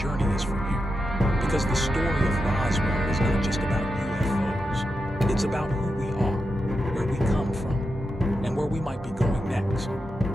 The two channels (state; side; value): normal; both; correlation 0.87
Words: is for you. Because the story of Roswell is not just about UFOs. It's about who we are, where we come from, and where we might be going next.